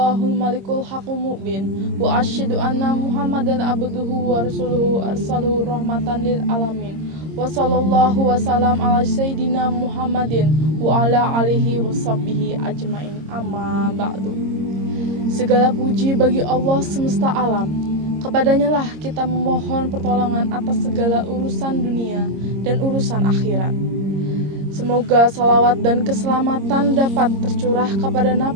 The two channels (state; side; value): late; left; 26 ms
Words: malikul haqqul mubin wa asyhadu anna Muhammadan abduhu wa rasuluhu arsaluhu rahmatan lil alamin. Wa sallallahu wasallam ala sayyidina Muhammadin wa ala alihi washabbihi ajmain. Amma ba'du. Segala puji bagi Allah semesta alam. Kepadanya lah kita memohon pertolongan atas segala urusan dunia dan urusan akhirat. Semoga salawat dan keselamatan dapat tercurah kepada